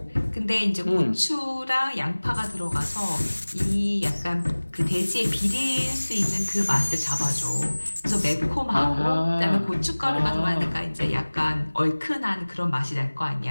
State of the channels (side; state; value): both; inverted; correlation -1.00